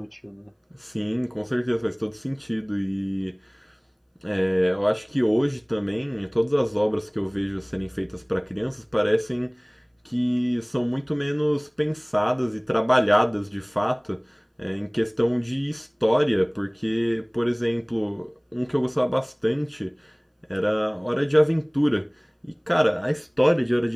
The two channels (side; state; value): both; identical; correlation 1.00